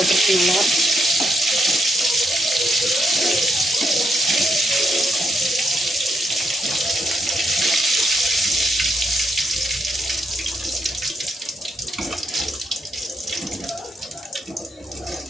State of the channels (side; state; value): both; normal; correlation 0.79